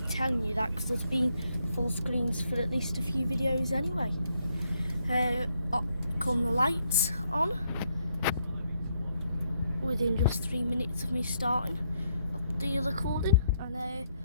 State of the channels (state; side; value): inverted; both; correlation -0.75